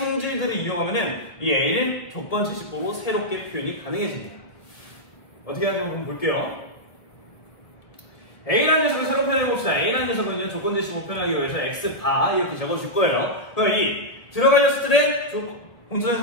이용하면은 이 a를 조건제시법으로 새롭게 표현이 가능해집니다. 어떻게 하는지 한번 볼게요. a라는 녀석을 새로 표현해 봅시다. a라는 녀석은요, 조건제시법 표현하기 위해서 x바 이렇게 적어줄 거예요. 그럼 이 들어갈 녀석들의 공통적인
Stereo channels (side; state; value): right; late; 1.3 ms